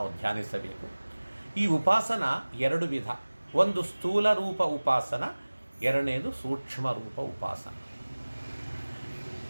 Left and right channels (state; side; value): inverted; both; correlation -1.00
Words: ಧ್ಯಾನಿಸಬೇಕು. ಈ ಉಪಾಸನ ಎರಡು ವಿಧ. ಒಂದು ಸ್ಥೂಲ ರೂಪ ಉಪಾಸನ, ಎರಡನೇದು ಸೂಕ್ಷ್ಮ ರೂಪ ಉಪಾಸನ.